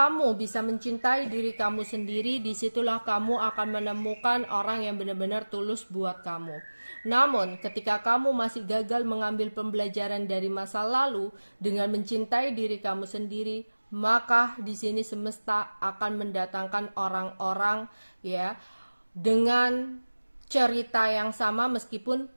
bisa mencintai diri kamu sendiri, disitulah kamu akan menemukan orang yang benar-benar tulus buat kamu. Namun, ketika kamu masih gagal mengambil pembelajaran dari masa lalu dengan mencintai diri kamu sendiri, maka di sini semesta akan mendatangkan orang-orang ya dengan cerita yang sama meskipun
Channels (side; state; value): both; inverted; correlation -1.00